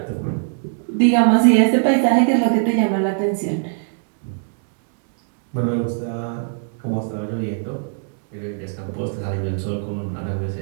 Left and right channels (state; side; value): silent; left; digital silence